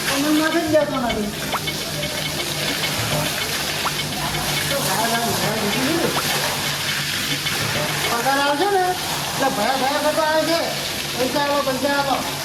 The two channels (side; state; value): both; identical; correlation 1.00